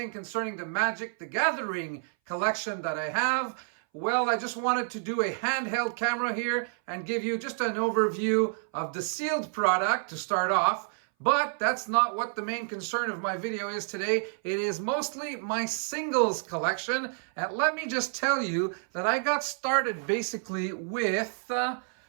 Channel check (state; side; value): silent; left; 58 dB below the other